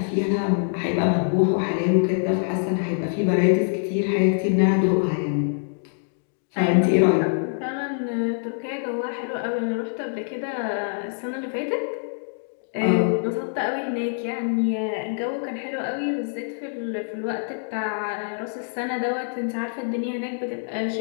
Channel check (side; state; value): right; silent; digital silence